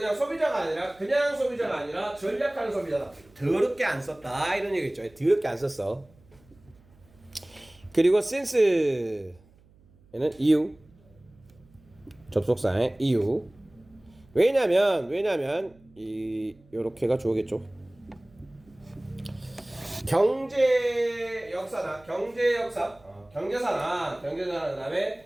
소비자가 아니라 전략하는 소비자다. 더럽게 안 썼다 이런 얘기겠죠. 더럽게 안 썼어. 그리고 since 얘는 이유, 접속사의 이유. 왜냐면 요렇게가 좋겠죠. 경제사나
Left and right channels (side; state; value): right; noise; hum, 28 dB below the sound